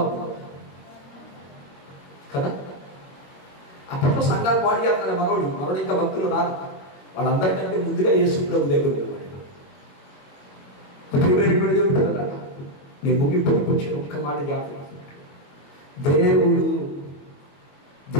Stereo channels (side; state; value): right; late; 22 ms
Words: కదా? అప్పట్లో సంఘాలు పాడు చేస్తాడు మనోడు ఇంకా భక్తులు రాదు. వాళ్ళందరికంటే ముందుగా యేసు ప్రభు దగ్గర ఉన్నాడు. నేను ముగింపుకి వచ్చి ఒక్క మాట జ్ఞాపకం. దేవుడు